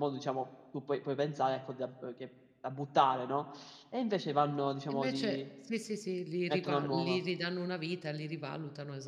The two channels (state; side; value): identical; both; correlation 1.00